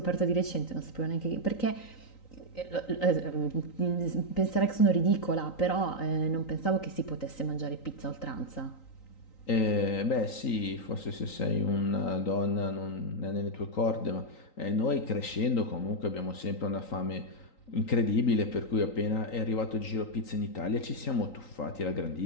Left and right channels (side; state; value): right; late; 3.9 ms